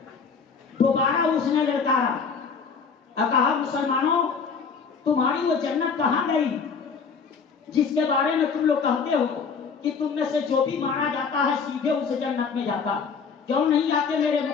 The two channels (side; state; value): right; quieter; 5.7 dB